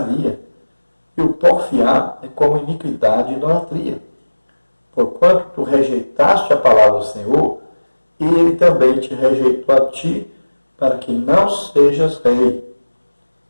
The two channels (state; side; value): inverted; both; correlation -1.00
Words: e o porfiar é como iniquidade e idolatria. Porquanto tu rejeitaste a palavra do Senhor, e ele também te rejeitou a ti, para que não sejas rei.